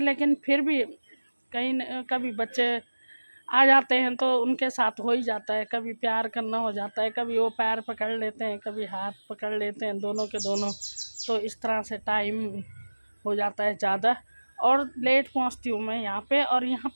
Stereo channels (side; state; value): both; inverted; correlation -1.00